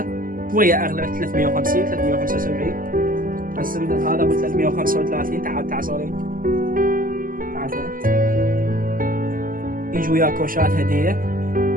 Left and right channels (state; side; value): late; left; 0.41 ms